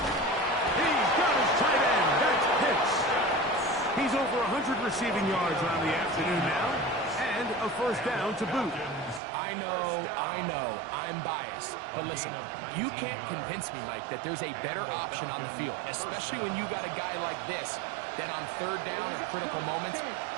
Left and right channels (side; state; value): left; drops out; at 9.2 s